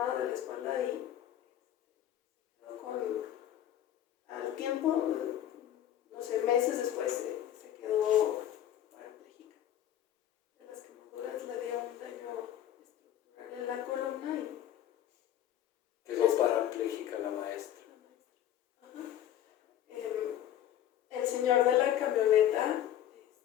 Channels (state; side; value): quieter; right; 11.4 dB